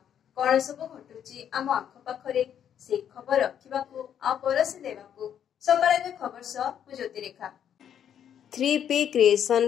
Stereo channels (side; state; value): right; quieter; 9.2 dB